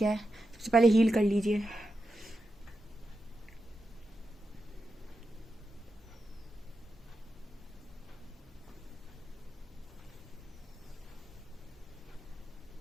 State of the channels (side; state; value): both; normal; correlation 0.89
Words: है, सबसे पहले हील कर लीजिए।